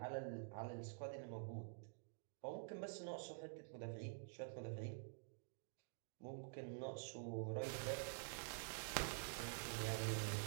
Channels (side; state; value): left; silent; digital silence